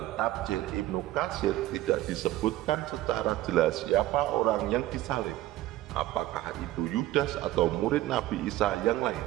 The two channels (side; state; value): left; quieter; 15.5 dB